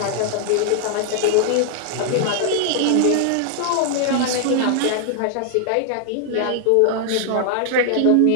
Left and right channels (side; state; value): both; different; correlation -0.01